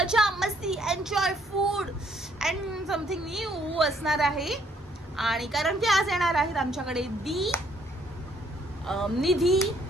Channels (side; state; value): both; normal; correlation 0.67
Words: मस्ती enjoy food and something new असणार आहे. आणि कारण की आज येणार आहेत आमच्याकडे निधी